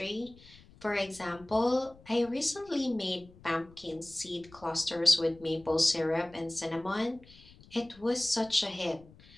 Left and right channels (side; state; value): left; noise; rumble, 24 dB below the sound